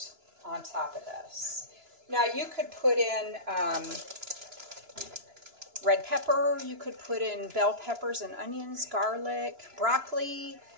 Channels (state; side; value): late; left; 2.9 ms